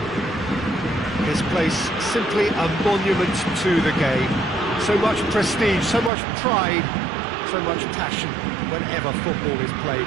This place simply a monument to the game. So much prestige, so much pride, so much passion whenever football is played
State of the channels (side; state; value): left; drops out; at 6.1 s